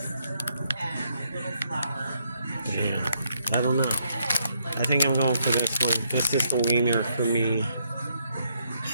and a little flour. Yeah, I don't know. I think I'm going for this one. This is the wiener for me.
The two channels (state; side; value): inverted; both; correlation -0.74